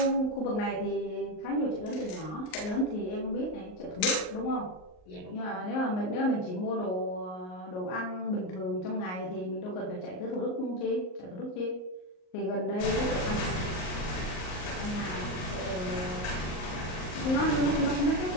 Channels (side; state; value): right; late; 38 ms